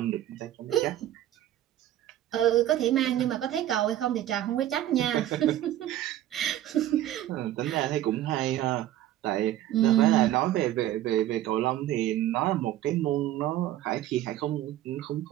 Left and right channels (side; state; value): left; quieter; 13.1 dB